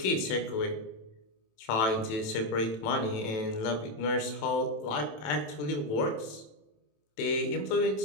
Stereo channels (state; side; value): late; right; 27 ms